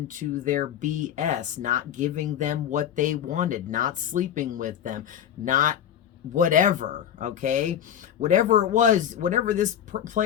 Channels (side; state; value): right; quieter; 9.7 dB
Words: their BS, not giving them what they wanted, not sleeping with them, not whatever, okay, whatever it was, whatever this